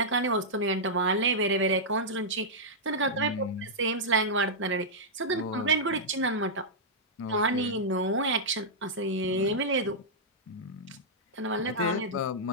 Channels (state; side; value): normal; both; correlation -0.10